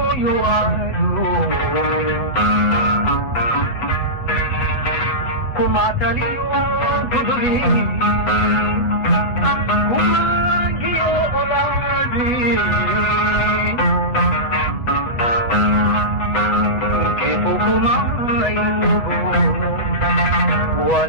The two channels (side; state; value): right; late; 8.1 ms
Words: waayo kuma taliyo guduri kuma giyo olaadi kifo kuma ayubo